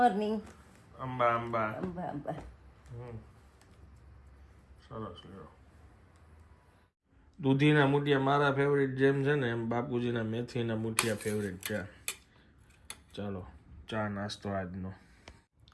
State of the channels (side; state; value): both; identical; correlation 1.00